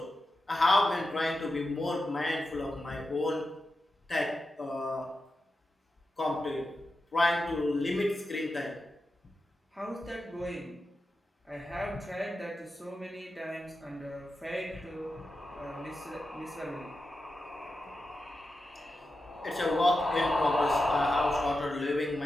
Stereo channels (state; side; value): normal; both; correlation 0.90